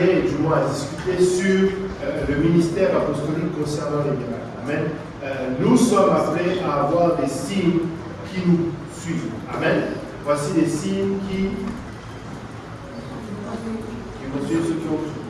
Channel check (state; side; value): identical; both; correlation 1.00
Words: et du moins à discuter sur le ministère apostolique concernant les miracles. Amen. Nous sommes appelés à avoir des signes qui nous suivent. Amen. Voici des signes qui vont suivre ceux qui ont cru.